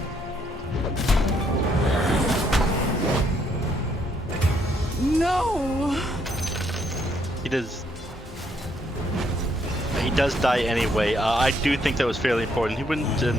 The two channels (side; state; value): both; normal; correlation 0.71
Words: No! He does die anyway. I do think that was fairly important. He